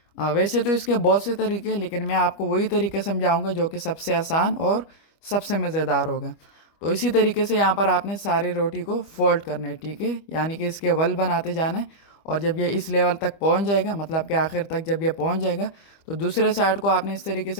वैसे तो इसके बहुत से तरीके हैं, लेकिन मैं आपको वही तरीके समझाऊंगा जो कि सबसे आसान और सबसे मज़ेदार होगा। तो इसी तरीके से यहाँ पर आपने सारी रोटी को फोल्ड करना है, ठीक है, यानी कि इसके वल बनाते जाना है। और जब ये इस लेवल तक पहुँच जाएगा, मतलब कि आखिर तक जब ये पहुँच जाएगा, तो दूसरे साइड को आपने इस तरीके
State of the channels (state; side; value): late; right; 25 ms